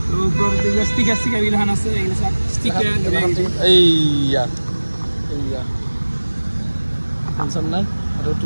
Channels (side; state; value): both; inverted; correlation -1.00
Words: ষ্টিকাৰ এইগিলাখন আছে, এইয়া টেনশ্যন নাই। আৰু